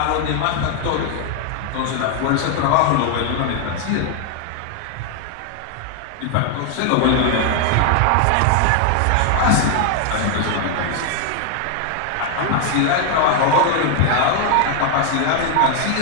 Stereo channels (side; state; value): both; different; correlation 0.00